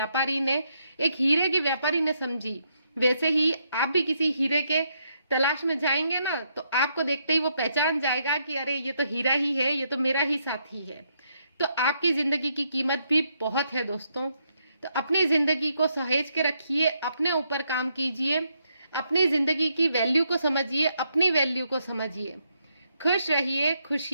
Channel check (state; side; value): inverted; both; correlation -0.77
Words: हीरे के व्यापारी ने समझी। वैसे ही आप भी किसी हीरे के तलाश में जाएंगे ना, तो आपको देखते ही वो पहचान जाएगा कि अरे ये तो हीरा ही है, ये तो मेरा ही साथी है। तो आपकी जिंदगी की कीमत भी बहुत है दोस्तों। तो अपनी जिंदगी को सहेज के रखिए, अपने ऊपर काम कीजिए, अपनी जिंदगी की वैल्यू को समझिए, अपनी वैल्यू को समझिए। खुश रहिए,